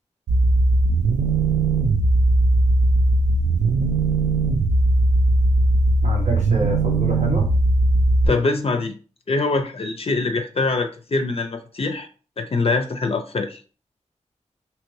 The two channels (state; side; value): normal; both; correlation 0.74